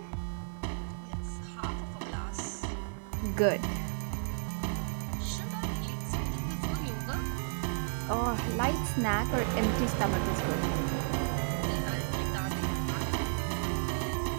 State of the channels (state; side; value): silent; left; digital silence